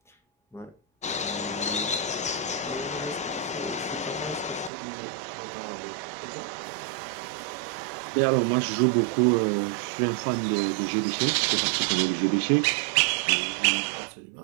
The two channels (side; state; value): left; drops out; at 4.7 s